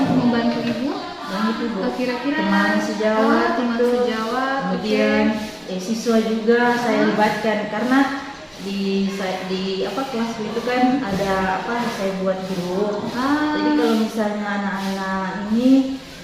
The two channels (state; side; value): identical; both; correlation 1.00